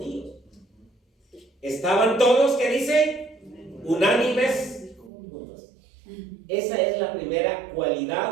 Estaban todos, ¿qué dice? Unánimes juntos. Esa es la primera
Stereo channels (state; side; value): drops out; left; at 5.1 s